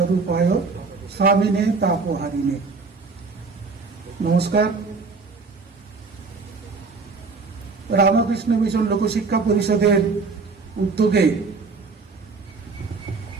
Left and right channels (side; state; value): left; quieter; 4.4 dB